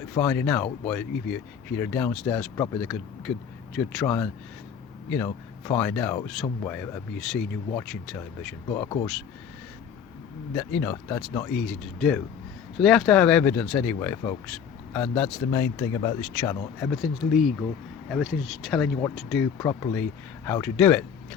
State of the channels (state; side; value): quieter; right; 7.4 dB